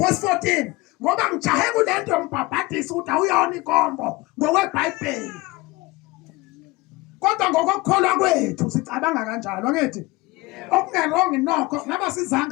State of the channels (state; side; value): quieter; right; 21.9 dB